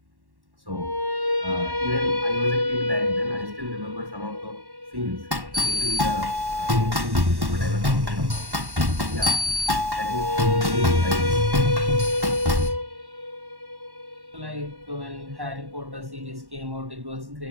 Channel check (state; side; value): late; left; 1.1 ms